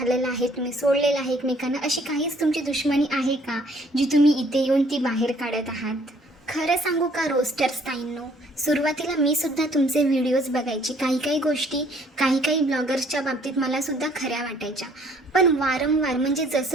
आहे, तुम्ही सोडलेलं आहे एकमेकांना, अशी काहीच तुमची दुश्मनी आहे का जी तुम्ही इथे येऊन ती बाहेर काढत आहात? खरं सांगू का रोस्टर्स ताईंनो, सुरुवातीला मी सुद्धा तुमचे व्हिडिओज बघायची. काही गोष्टी काही ब्लॉगर्सच्या बाबतीत मलासुद्धा खऱ्या वाटायच्या. पण वारंवार म्हणजे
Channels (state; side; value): normal; both; correlation 0.61